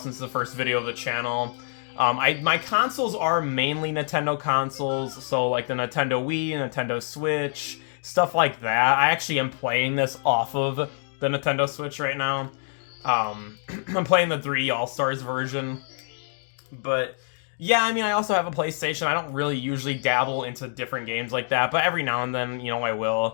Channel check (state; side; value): silent; right; 61 dB below the other